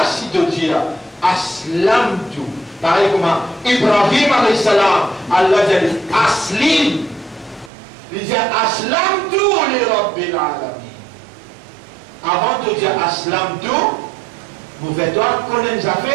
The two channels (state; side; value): drops out; left; at 7.7 s